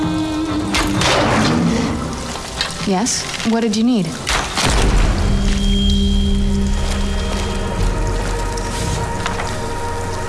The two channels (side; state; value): both; identical; correlation 1.00